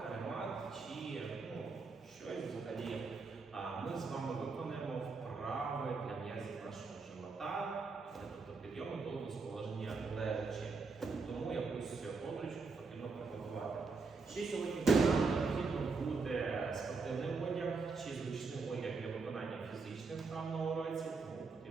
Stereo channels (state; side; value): quieter; left; 4.4 dB